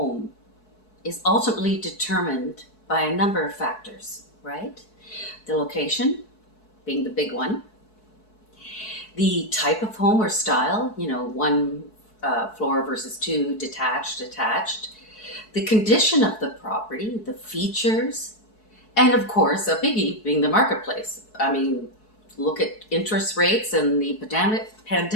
is ultimately determined by a number of factors, right? The location being the big one, the type of home or style, one floor versus two, detached, the condition of the property, the features, and of course, a biggie being the marketplace. I mean, look at interest rates, and the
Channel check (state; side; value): late; right; 4.7 ms